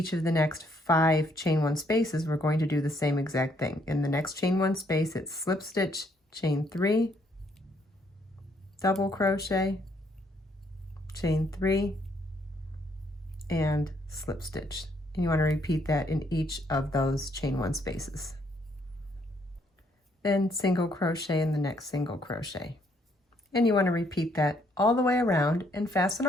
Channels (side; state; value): both; normal; correlation 0.69